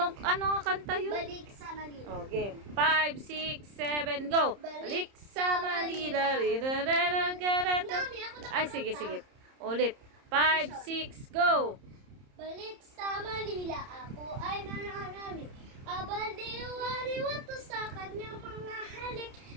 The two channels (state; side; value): late; left; 30 ms